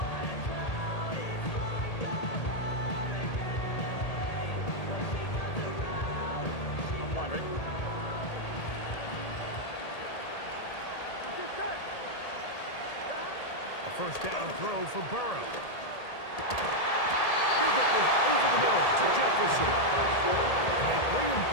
I'm wondering. A first down throw for Burrow. He'll get this over the middle to Jefferson. And they bring him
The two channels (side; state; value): right; late; 1.8 ms